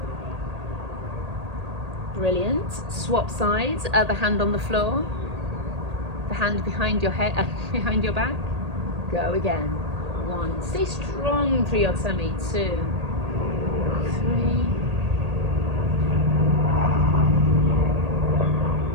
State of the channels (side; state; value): left; late; 1.8 ms